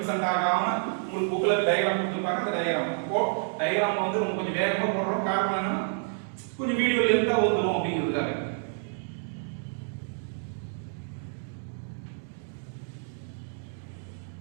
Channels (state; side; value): silent; left; 59 dB below the other